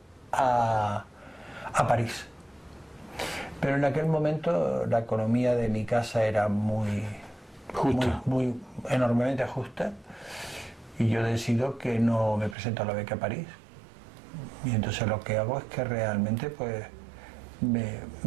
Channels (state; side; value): drops out; left; at 12.6 s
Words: a París. Pero en aquel momento la economía de mi casa era muy enormemente justa, y yo decido que no me presento a la beca a París. Y entonces lo que hago es que realmente pues